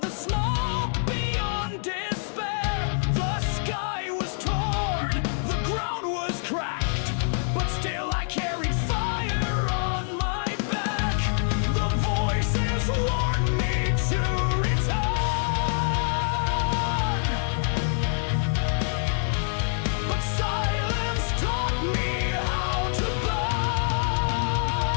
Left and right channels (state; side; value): silent; right; 61 dB below the other